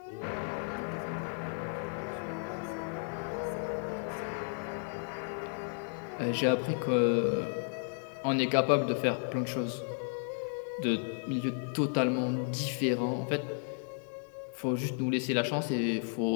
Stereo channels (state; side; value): silent; right; 55 dB below the other